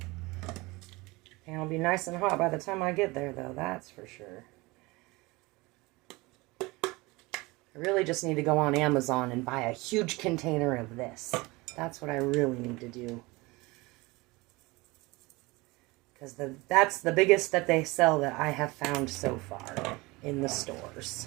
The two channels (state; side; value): quieter; left; 23.1 dB